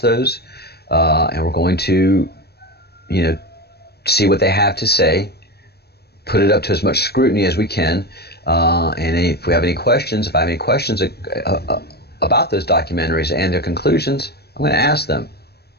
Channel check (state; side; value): late; right; 0.47 ms